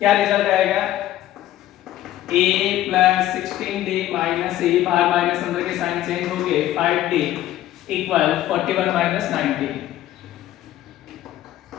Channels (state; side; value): quieter; right; 13.6 dB